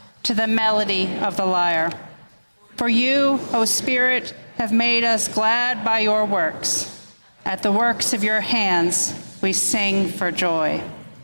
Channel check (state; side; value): inverted; both; correlation -1.00